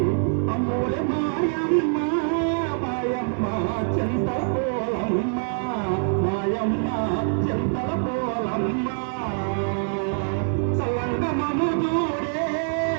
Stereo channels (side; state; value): left; silent; 62 dB below the other